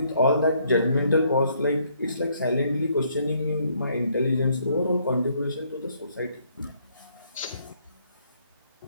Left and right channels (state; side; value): inverted; both; correlation -0.68